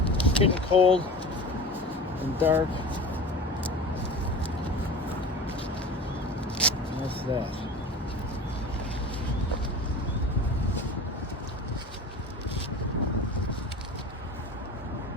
It's getting cold and dark. And that's that.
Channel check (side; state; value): both; normal; correlation 0.35